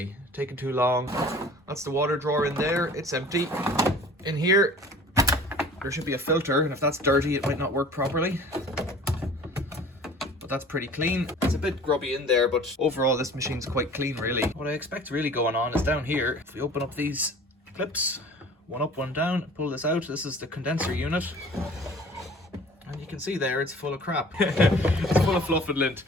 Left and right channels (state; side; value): normal; both; correlation 0.46